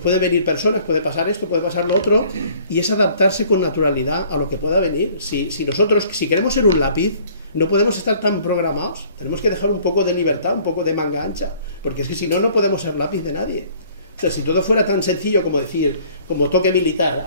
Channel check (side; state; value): both; inverted; correlation -0.55